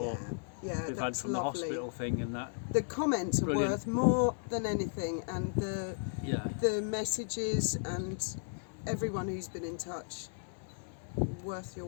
we've had from the hospital thing and that. The comments are worth more than anything, and the messages and everyone who's been in touch, worth your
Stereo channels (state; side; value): silent; right; digital silence